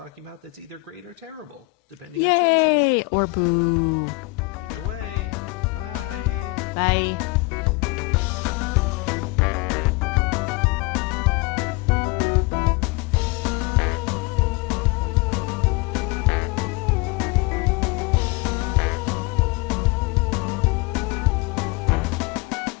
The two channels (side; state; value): right; quieter; 24.4 dB